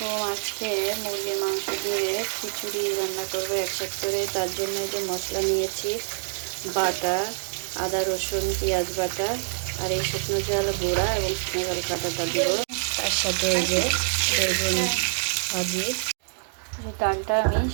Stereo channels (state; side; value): silent; left; digital silence